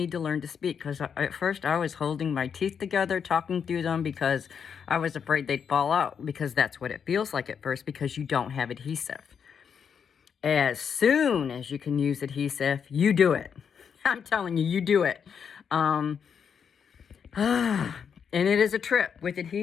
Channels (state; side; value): quieter; right; 7.1 dB